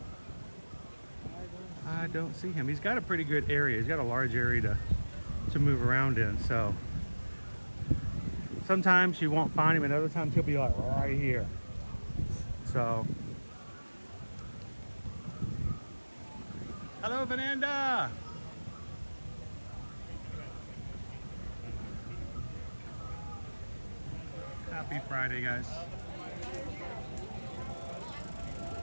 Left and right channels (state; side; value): inverted; both; correlation -1.00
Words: I don't see him. He's got a pretty good area. He's got a large area to move around in. So sometimes you won't find him, and other times he'll be like right here. So, hello, Fernanda. Happy Friday, guys.